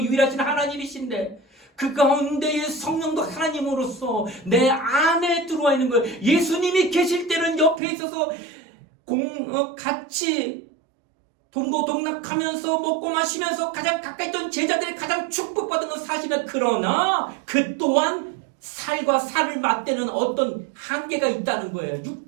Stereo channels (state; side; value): drops out; left; at 7.8 s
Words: 하나님이신데 그 가운데의 성령도 하나님으로서 내 안에 들어와 있는 거예요. 예수님이 계실 때는 옆에 있어서 같이 동고동락하면서 먹고 마시면서 가장 가까이 있던 제자들이 가장 축복받은 건 사실은 그러나 그 또한 살과 살을 맞대는 어떤 한계가 있다는 거예요.